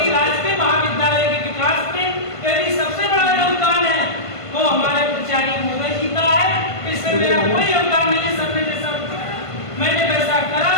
राजकीय महाविद्यालय के विकास में यदि सबसे बड़ा योगदान है वो हमारे प्राचार्य महोदय जी का है। इससे मेरा कोई योगदान नहीं है। सर ने जैसा मैंने वैसा करा,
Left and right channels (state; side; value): late; right; 1.5 ms